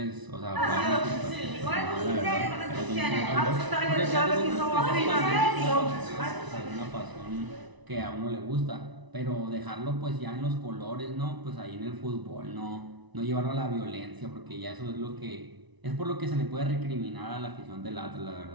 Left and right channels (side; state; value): left; late; 1.0 ms